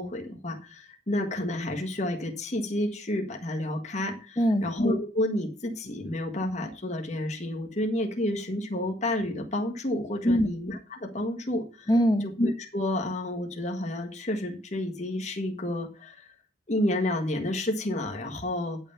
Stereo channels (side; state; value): both; normal; correlation 0.65